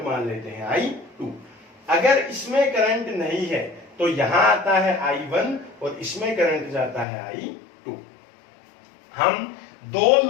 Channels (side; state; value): right; drops out; at 7.1 s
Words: मान लेते हैं I2। अगर इसमें करंट नहीं है तो यहां आता है I1 और इसमें करंट जाता है I2। हम दो